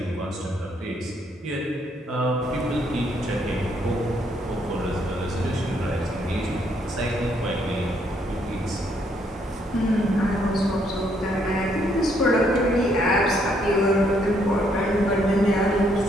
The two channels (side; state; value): both; normal; correlation 0.71